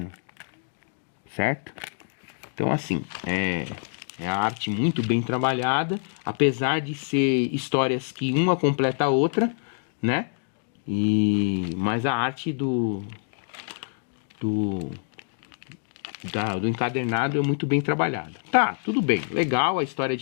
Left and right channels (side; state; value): right; silent; digital silence